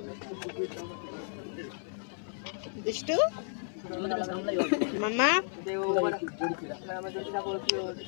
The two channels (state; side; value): silent; right; 56 dB below the other